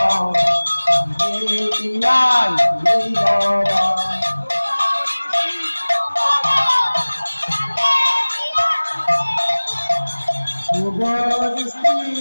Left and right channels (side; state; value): both; inverted; correlation -1.00